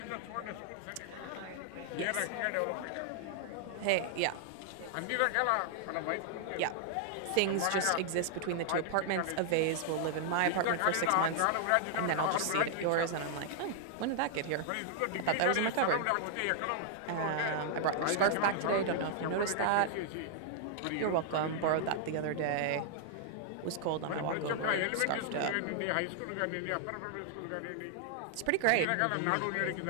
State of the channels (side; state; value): both; different; correlation -0.01